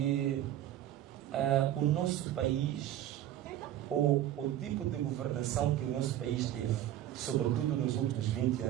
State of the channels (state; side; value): quieter; left; 12.3 dB